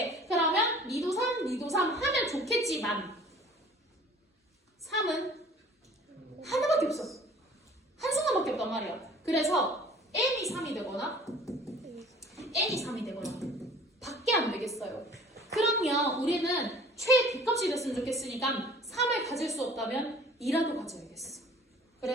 그러면 니도 3, 니도 3 하면 좋겠지만 3은 하나밖에 없어. 한순간밖에 없단 말이야. 그래서 n이 3이 되거나 n이 3이 되거나 밖에 안 되겠어요. 그러면 우리는 최대값이 됐으면 좋겠으니까 3을 가질 수 없다면 2라도 가져야겠어.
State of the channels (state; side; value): normal; both; correlation 0.49